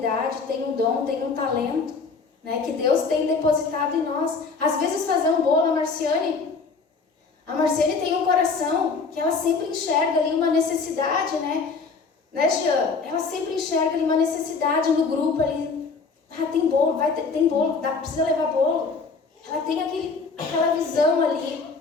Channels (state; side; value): quieter; right; 4.6 dB